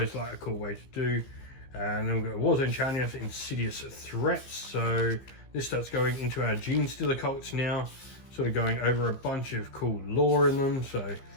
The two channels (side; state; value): right; late; 15 ms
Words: like a cool way to do. And then we've got Warzone Challenge, Insidious Threats. So this starts going into our Gene Stealer cults now, sort of going over a bunch of cool lore in them. So if